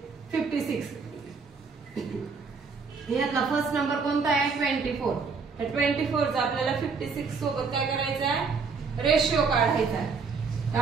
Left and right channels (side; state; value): left; quieter; 5.0 dB